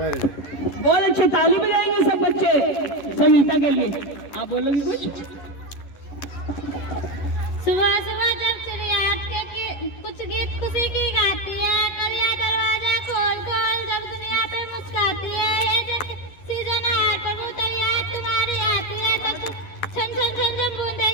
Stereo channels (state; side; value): late; right; 11 ms